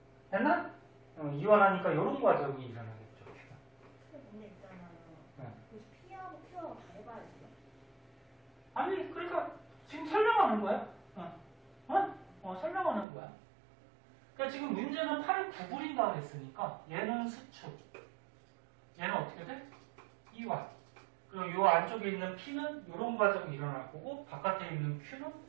됐나? 이완하니까 이런 과정이 일어나겠죠. 문제 있잖아요. 네. P하고 Q하고 다 해봐야 돼요? 아니, 그러니까 지금 설명하는 거야. 설명하는 거야. 그러니까 지금 문제는 팔을 구부린다 그랬으니까 얘는 수축. 얘는 어떻게 돼? 이완. 그리고 이 안쪽에 있는 P는 이런 과정이 일어날 거고 바깥에 있는 Q는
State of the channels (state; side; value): drops out; left; at 13.1 s